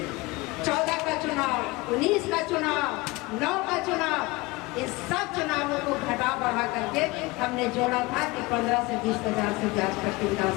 14 का चुनाव, 19 का चुनाव, 9 का चुनाव, इन सब चुनावों को घटा बढ़ा करके हमने जोड़ा था कि 15 से 20 हजार से बाजपट्टी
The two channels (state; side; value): quieter; right; 22.6 dB